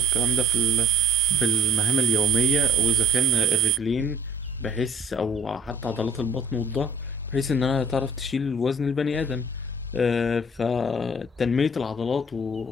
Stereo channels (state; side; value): normal; both; correlation 0.50